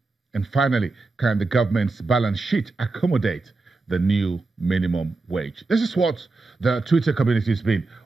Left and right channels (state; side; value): quieter; left; 3.6 dB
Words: And finally, can the government's balance sheet accommodate the new minimum wage? This is what the Twitter community has been